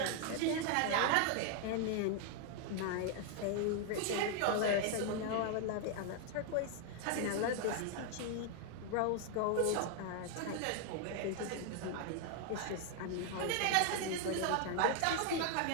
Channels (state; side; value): different; both; correlation 0.00